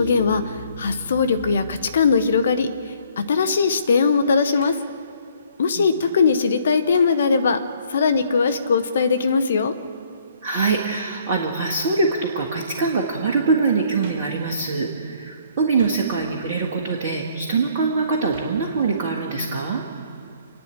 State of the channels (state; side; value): inverted; both; correlation -0.62